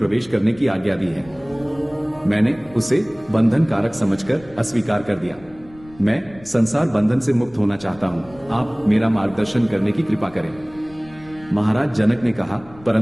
करने की आज्ञा दी है। मैंने उसे बंधन कारक समझकर अस्वीकार कर दिया। मैं संसार बंधन से मुक्त होना चाहता हूँ, आप मेरा मार्गदर्शन करने की कृपा करें। महाराज जनक ने कहा,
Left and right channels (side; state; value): left; noise; rumble, 23 dB below the sound